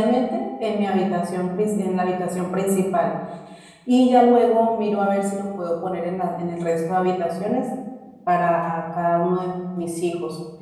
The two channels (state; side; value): identical; both; correlation 1.00